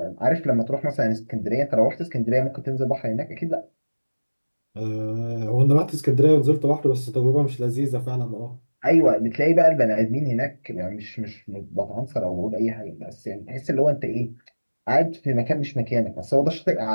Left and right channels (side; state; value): both; inverted; correlation -1.00